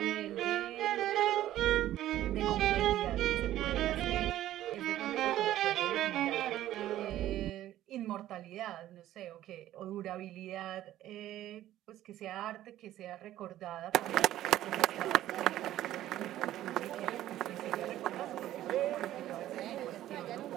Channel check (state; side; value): quieter; left; 13.5 dB